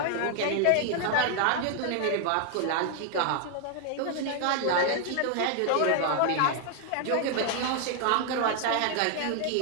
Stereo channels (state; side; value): different; both; correlation 0.00